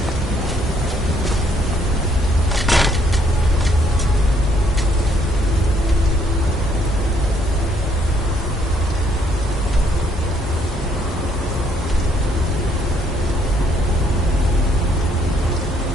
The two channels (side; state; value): both; normal; correlation 0.68